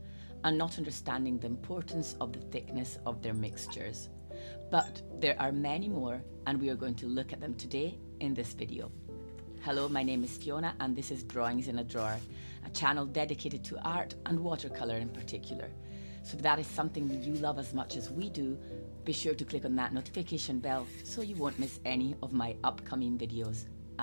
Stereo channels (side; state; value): both; inverted; correlation -1.00